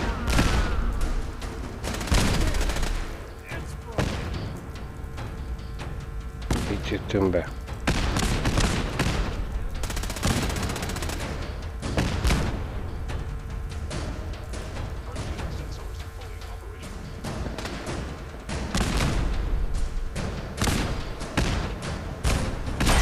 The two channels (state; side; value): identical; both; correlation 1.00